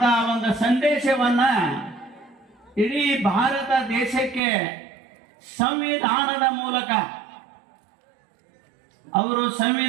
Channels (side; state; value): left; drops out; at 4.4 s